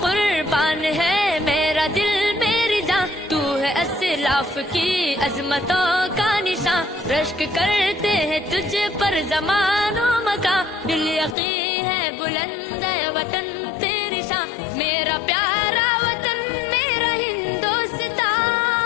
कुर्बान है मेरा दिल मेरी जान, तू है असलाफ की अजमतों का निशान, रश्क करते हैं तुझ पर ज़मानो मका, दिल यकीन है बुलंद है वतन तेरी शान, मेरा प्यारा वतन मेरा हिंदुस्तां,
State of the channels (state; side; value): drops out; right; at 11.4 s